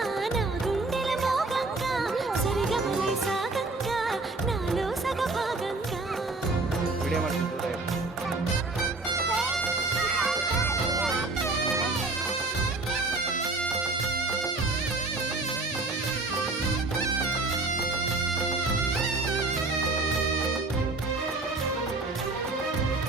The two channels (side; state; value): left; quieter; 3.3 dB